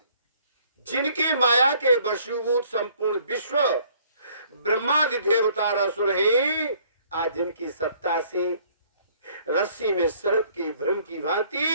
जिनकी माया के वशीभूत संपूर्ण विश्व ब्रह्मादि देवता असुर हैं, आज जिनकी सत्ता से रस्सी में सर्प की भ्रम की भांति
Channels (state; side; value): inverted; both; correlation -0.60